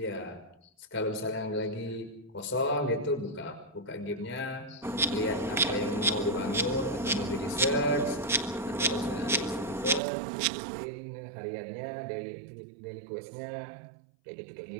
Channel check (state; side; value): drops out; left; at 10.0 s